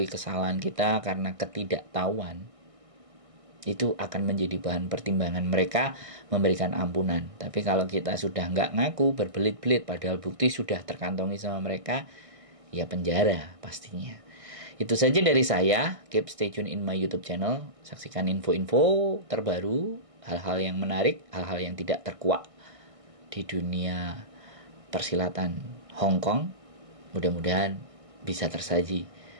kesalahan kita karena ketidaktahuan, itu akan menjadi bahan pertimbangan mereka memberikan ampunan. Tapi kalau kita sudah nggak ngaku, berbelit-belit padahal bukti sudah terkantongi sama mereka, ya penjara pastinya. Itu saja dari saya. Keep stay tune in my YouTube channel. Saksikan info-info terbaru, hal-hal yang menarik, hal-hal yang tidak terkuak di dunia persilatan Hongkong. Mudah-mudahan bisa tersaji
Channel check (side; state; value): left; late; 1.6 ms